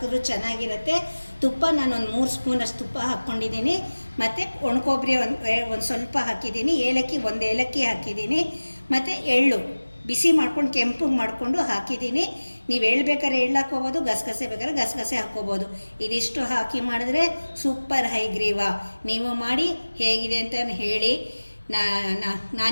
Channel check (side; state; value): both; inverted; correlation -1.00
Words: ಚೆನ್ನಾಗಿರುತ್ತೆ. ತುಪ್ಪ ನಾನು ಒಂದು 3 ಸ್ಪೂನಷ್ಟು ತುಪ್ಪ ಹಾಕ್ಕೊಂಡಿದ್ದೀನಿ. ಮತ್ತು ಒಣಕೊಬ್ಬರಿ ಒಂದು ಸ್ವಲ್ಪ ಹಾಕಿದ್ದೀನಿ. ಏಲಕ್ಕಿ 1 ಏಲಕ್ಕಿ ಹಾಕಿದ್ದೀನಿ. ಮತ್ತು ಎಳ್ಳು ಬಿಸಿ ಮಾಡ್ಕೊಂಡು ಕೆಂಪಗೆ ಮಾಡಿಕೊಂಡು ಹಾಕಿದ್ದೀನಿ. ನೀವು ಎಳ್ಳು ಬೇಕಾದ್ರೆ ಎಳ್ಳು ಹಾಕ್ಕೋಬೋದು, ಗಸಗಸೆ ಬೇಕಾದ್ರೆ ಗಸಗಸೆ ಹಾಕ್ಕೋಬೋದು. ಇದಿಷ್ಟು ಹಾಕಿ ಮಾಡಿದ್ರೆ ಸೂಪರ್ ಹೈಗ್ರೀವ. ನೀವು ಮಾಡಿ ಹೇಗಿದೆ ಅಂತ ಹೇಳಿ.